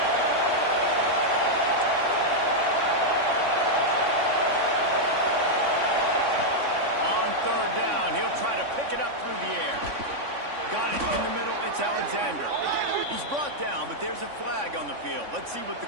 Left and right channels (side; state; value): left; late; 3.5 ms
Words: On third down, he'll try to pick it up through the air. Got it in the middle. It's Alexander. He's brought down, but there's a flag on the field. Let's see what the